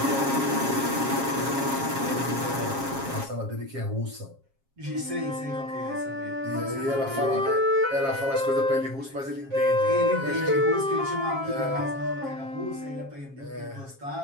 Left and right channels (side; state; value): left; late; 7.4 ms